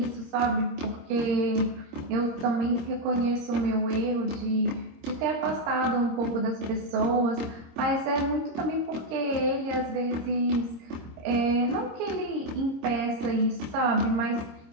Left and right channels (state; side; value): late; left; 26 ms